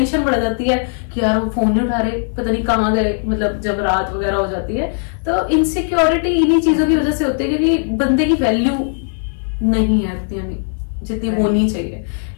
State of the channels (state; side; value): silent; right; 59 dB below the other